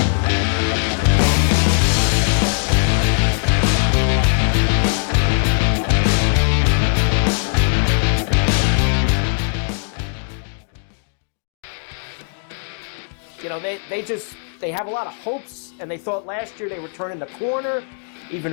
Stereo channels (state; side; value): silent; right; 65 dB below the other